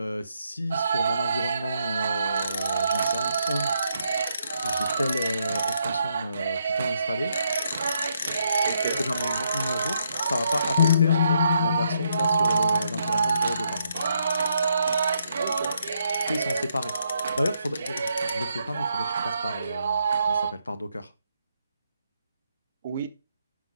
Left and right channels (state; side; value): inverted; both; correlation -0.76